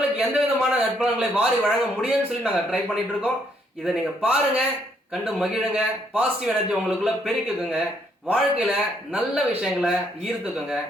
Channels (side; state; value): both; normal; correlation 0.71